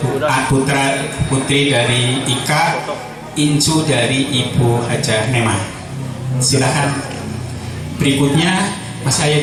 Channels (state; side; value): identical; both; correlation 1.00